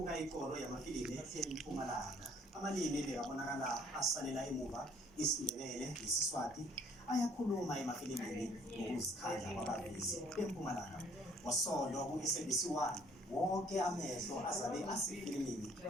ikoro yamafilimu eMpumalanga. Amalimi bekabonakala asalela emuva isiNdebele nesiswati ayakhuluma emafilimini ngokuzikhandla kwabavezi beMpumalanga. Ngosondo ku-SABC 1 wonke amehlo azabe asefilimini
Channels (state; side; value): normal; both; correlation 0.60